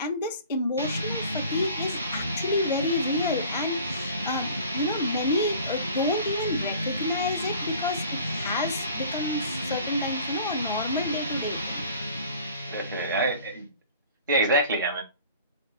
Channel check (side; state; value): both; inverted; correlation -0.46